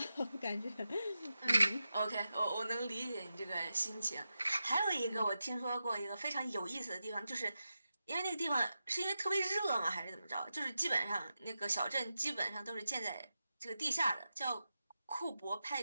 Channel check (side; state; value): both; inverted; correlation -0.90